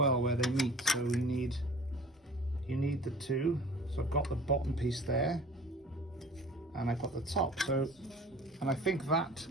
where they meet, so you need the two. So I've got the bottom piece there, and I've got the top. So, and I think that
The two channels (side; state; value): both; normal; correlation 0.46